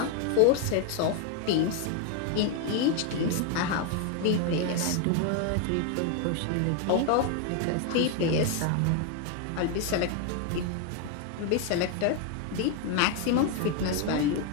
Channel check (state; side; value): different; both; correlation 0.01